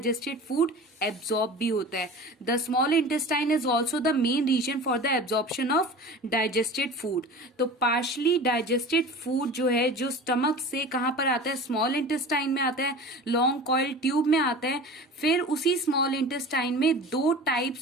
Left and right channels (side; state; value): both; normal; correlation 0.36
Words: फूड एब्जॉर्ब भी होता है। The small intestine is also the main reason for the absorption of digested food. तो पार्शली डाइजेस्टेड फूड जो है जो स्टमक से कहां पर आता है? स्मॉल इंटेस्टाइन में आता है, लॉन्ग कॉइल ट्यूब में आता है। फिर उसी स्मॉल इंटेस्टाइन में 2